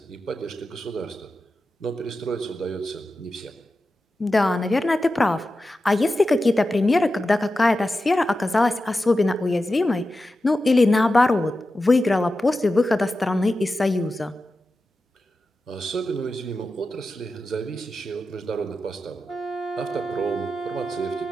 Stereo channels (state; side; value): normal; both; correlation 0.92